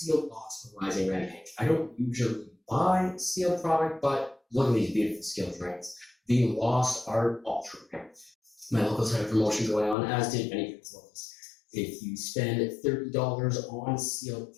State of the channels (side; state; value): right; drops out; at 10.0 s